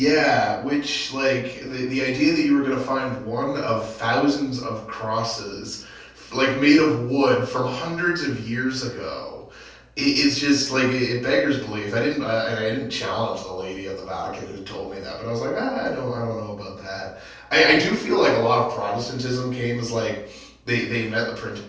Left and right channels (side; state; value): both; identical; correlation 1.00